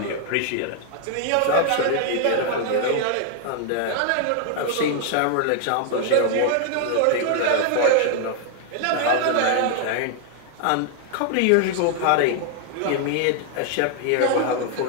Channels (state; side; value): different; both; correlation 0.00